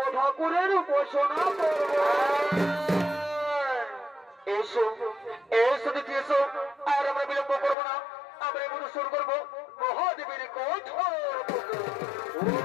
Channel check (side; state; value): right; drops out; at 7.8 s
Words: ঠাকুরের উপাসনা করব। এসো এসো দিদি এসো, আর আমরা বিলম্ব করবো না, আমরা এগুলো শুরু করবো মহাদেবের কঠোর